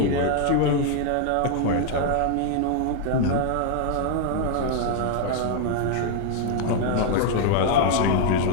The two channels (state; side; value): different; both; correlation 0.00